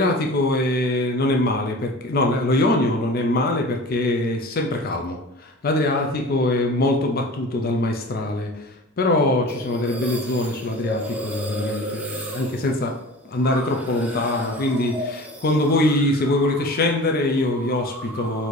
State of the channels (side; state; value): both; normal; correlation 0.39